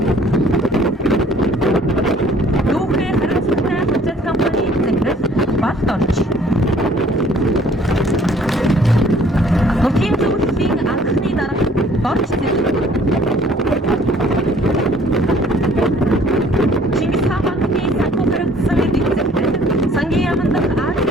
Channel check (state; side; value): normal; both; correlation 0.57